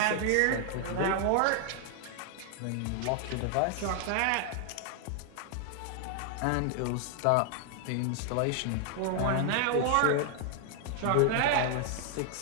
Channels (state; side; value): different; both; correlation 0.00